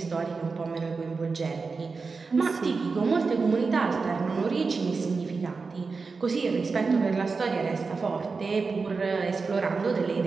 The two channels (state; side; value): quieter; left; 4.5 dB